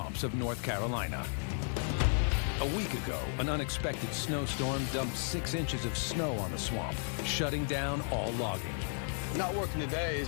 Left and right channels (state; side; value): silent; right; 55 dB below the other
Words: of North Carolina. A week ago, an unexpected snowstorm dumped 6 inches of snow on the swamp, shutting down all logging. Not working today is